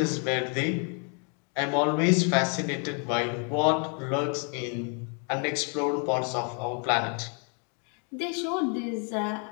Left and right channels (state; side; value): quieter; right; 38.8 dB